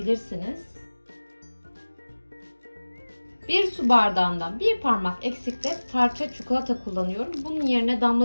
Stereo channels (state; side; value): inverted; both; correlation -1.00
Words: 1 su bardağından 1 parmak eksikte parça çikolata kullanıyorum. Bunun yerine